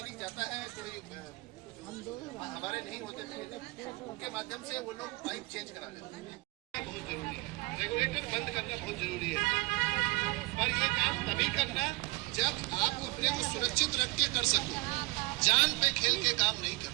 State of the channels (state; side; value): quieter; left; 23.4 dB